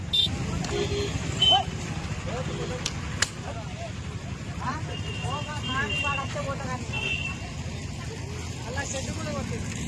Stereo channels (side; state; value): both; identical; correlation 1.00